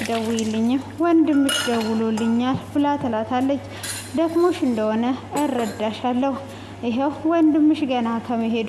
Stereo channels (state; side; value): identical; both; correlation 1.00